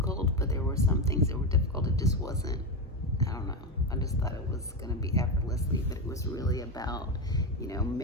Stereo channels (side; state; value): both; normal; correlation 0.13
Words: but there were some things that were difficult. It just wasn't. I don't know. I just thought it was going to be effortlessly, but it was really about,